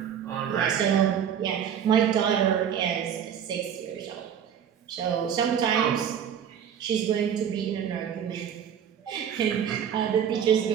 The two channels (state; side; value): quieter; left; 8.7 dB